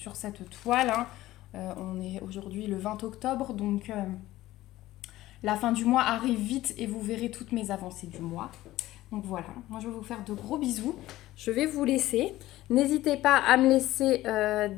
cette toile. Hein. On est aujourd'hui le 20 octobre, donc la fin du mois arrive vite et vous verrez toutes mes avancées du mois. Donc voilà, moi je vais vous faire de gros bisous. Je vais vous laisser. N'hésitez pas à me laisser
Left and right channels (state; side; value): quieter; right; 16.0 dB